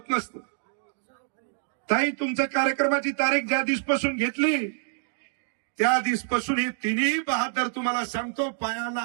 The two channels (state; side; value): silent; left; 60 dB below the other